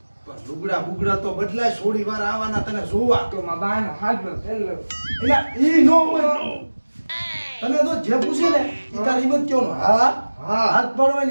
પણ લુગડા બુગડા તો બદલાય. છોડી વાર આવવાના તને જોવા તો માં બાનો હાથનો પેલો એટલે ઈ નો હોય. તને તો જે પૂછે ને ઈ તારી હિંમત કયો હા હા. હાથ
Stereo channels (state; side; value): inverted; both; correlation -1.00